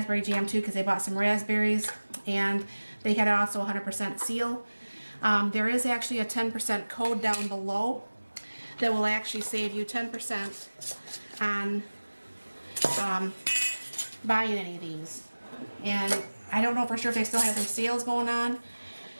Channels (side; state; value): both; inverted; correlation -1.00